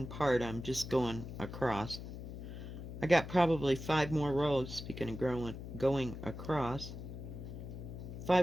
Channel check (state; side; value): noise; left; hum, 9 dB below the sound